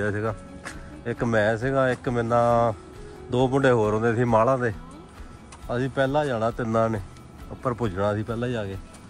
ਸੀਗਾ ਇੱਕ ਮੈਂ ਸੀਗਾ ਇੱਕ ਮੇਰੇ ਨਾਲ 2 ਮੁੰਡੇ ਹੋਰ ਹੁੰਦੇ ਸੀ ਮਾਲਾਂ ਦੇ ਅਸੀਂ ਪਹਿਲਾਂ ਜਾਣਾ ਤਿੰਨਾਂ ਨੇ ਉੱਪਰ ਪੁੱਜਣਾ ਸੀ ਪਹਿਲਾਂ ਜਾ ਕੇ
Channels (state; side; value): identical; both; correlation 1.00